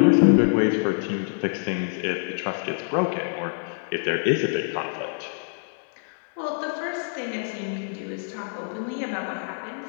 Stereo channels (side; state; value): right; silent; digital silence